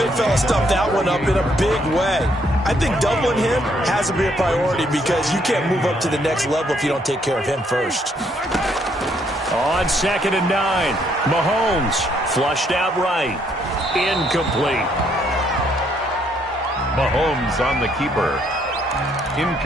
fella stuffed that one up in a big way. I think doubling him has to be a priority because you can't move up to the next level if you don't take care of him first. On 2nd and 9, Mahomes flushed out right. Incomplete. Mahomes on the keeper.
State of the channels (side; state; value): both; normal; correlation 0.70